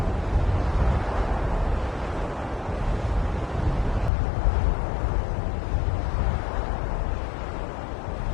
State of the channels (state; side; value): drops out; right; at 4.1 s